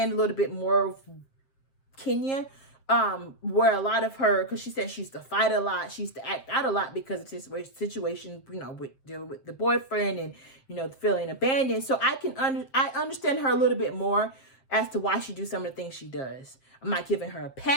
a little bit more of Kenya. Where a lot of her, because she said she used to fight a lot, she used to act out a lot because of this situation, you know, with dealing with the boyfriend and, you know, feeling abandoned. So I understand her a little bit more as to why she do some of the things she does. I'm not giving her a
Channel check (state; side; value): late; right; 7.6 ms